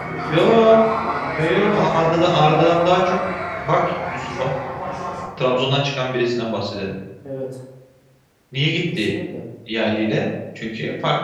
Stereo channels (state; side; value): identical; both; correlation 1.00